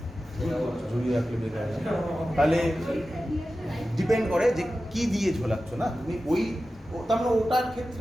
ঝুলিয়ে রাখলে বেকার তাহলে ডিপেন্ড করে যে কি দিয়ে ঝোলাচ্ছ না তুমি ওই তার মানে ওটার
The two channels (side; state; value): both; normal; correlation 0.94